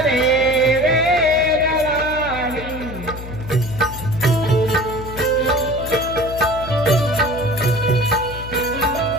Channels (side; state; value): left; noise; hum, 11 dB below the sound